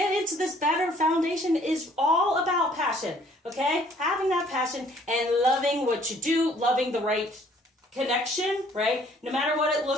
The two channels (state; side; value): normal; both; correlation 0.59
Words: into this better foundation is all about passion, okay? Having that passion and loving what you do, loving the right connection, right? No matter what it